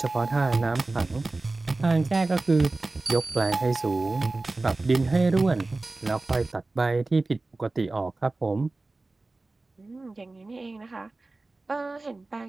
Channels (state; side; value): quieter; left; 3.2 dB